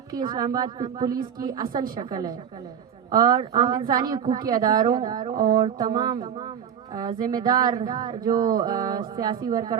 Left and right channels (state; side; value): quieter; left; 8.5 dB